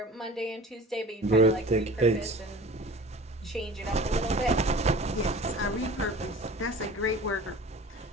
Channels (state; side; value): normal; both; correlation 0.41